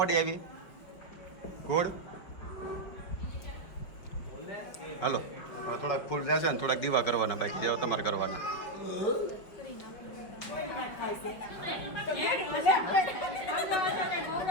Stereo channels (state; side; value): late; right; 5.3 ms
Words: આવી ગોળ હાલો હવે થોડાક ફૂલ જશે ને થોડાક દીવા કરવાના બાકી જેવા તમારે કરવાના